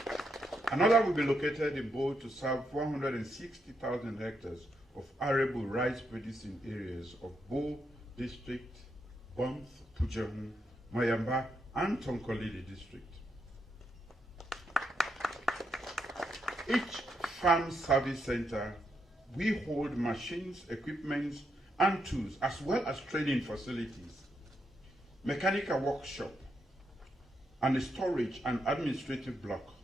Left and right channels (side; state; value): both; normal; correlation 0.80